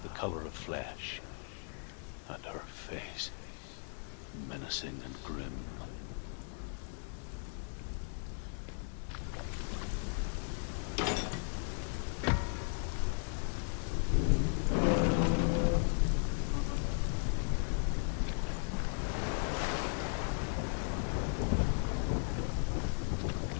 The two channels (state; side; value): silent; right; 53 dB below the other